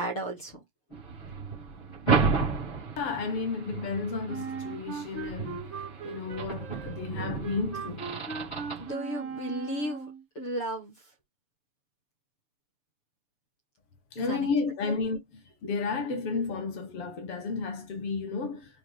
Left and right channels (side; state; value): right; late; 7.0 ms